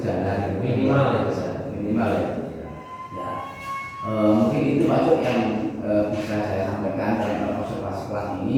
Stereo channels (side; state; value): both; identical; correlation 1.00